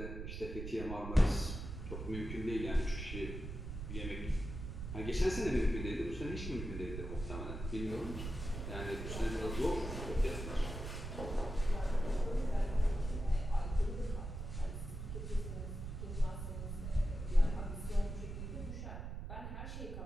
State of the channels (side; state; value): right; noise; rumble, 6 dB below the sound